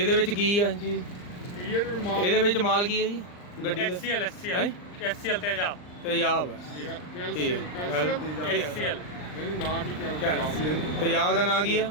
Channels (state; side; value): late; right; 39 ms